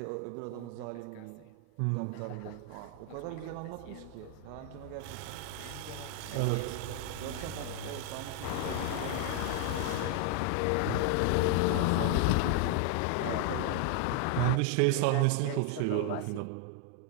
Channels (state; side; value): different; both; correlation 0.00